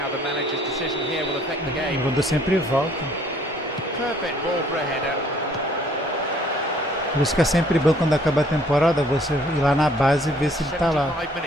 how the manager's decision here will affect the O game. jogador sempre volta. Perfect ball for a header. Por isso que é sempre bom quando acaba a temporada você ir lá na base e ver se ele tá lá. 75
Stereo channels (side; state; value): both; normal; correlation 0.60